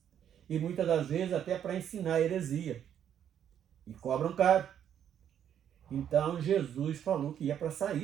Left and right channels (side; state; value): left; quieter; 9.5 dB